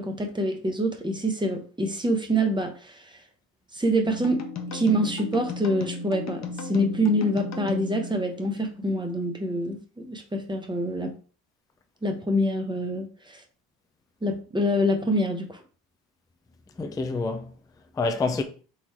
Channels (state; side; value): normal; both; correlation 0.54